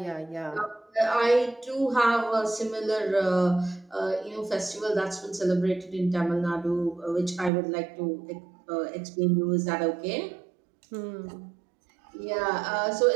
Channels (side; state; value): left; drops out; at 7.5 s